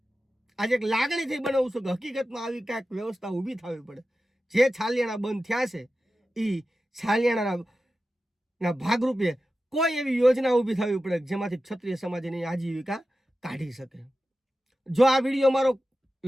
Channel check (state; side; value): normal; both; correlation 0.93